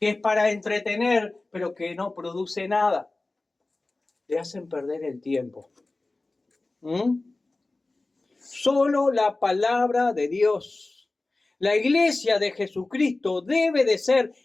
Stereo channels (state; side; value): quieter; right; 3.1 dB